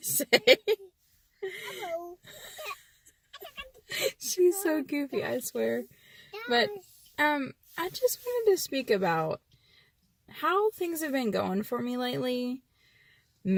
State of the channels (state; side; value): identical; both; correlation 1.00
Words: say. She's so goofy, I swear. But I just wanted to speak about how things have been going for me lately,